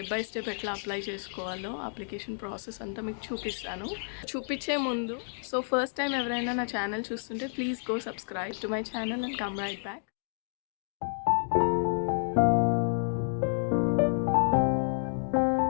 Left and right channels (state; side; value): silent; right; digital silence